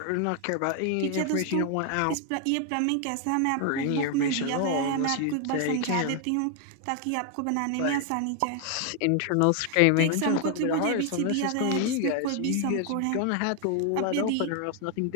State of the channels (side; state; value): both; different; correlation 0.00